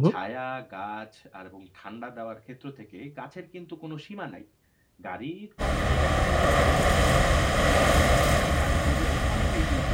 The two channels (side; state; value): both; identical; correlation 1.00